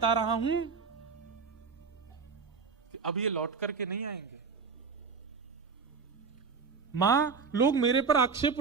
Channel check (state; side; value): quieter; left; 5.2 dB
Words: रहा हूं कि अब ये लौट करके नहीं आएंगे। मां लोग मेरे पर आक्षेप